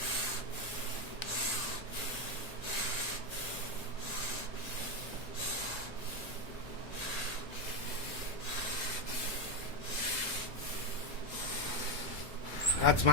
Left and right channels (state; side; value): normal; both; correlation 0.08